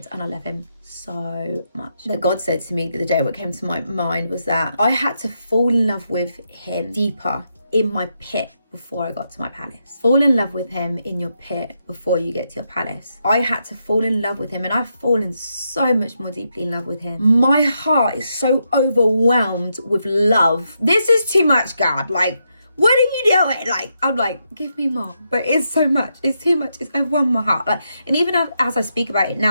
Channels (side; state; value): both; inverted; correlation -0.82